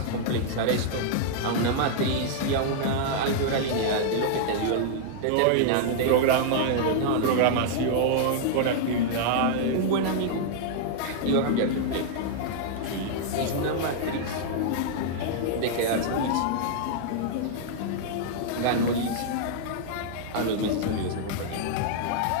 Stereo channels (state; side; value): different; both; correlation -0.01